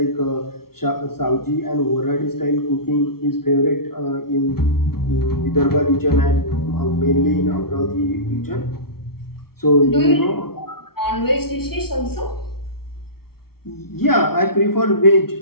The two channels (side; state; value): right; late; 0.94 ms